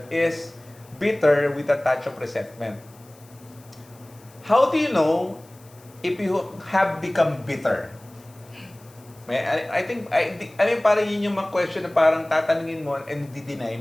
is bitter with a touch of resentment. How do you know if you have become bitter? I think, parang yun yung mga question na parang tatanungin mo and di-deny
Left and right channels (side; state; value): left; noise; hiss, 26 dB below the sound